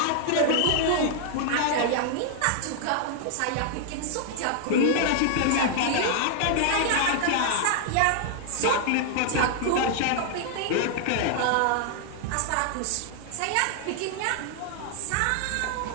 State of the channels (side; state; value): both; different; correlation 0.00